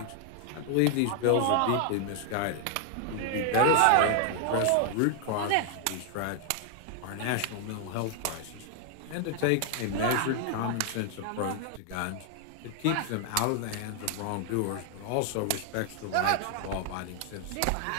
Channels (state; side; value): different; both; correlation 0.00